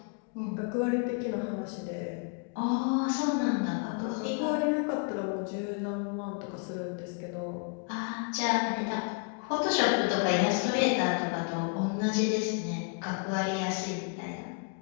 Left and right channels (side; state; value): right; quieter; 38.1 dB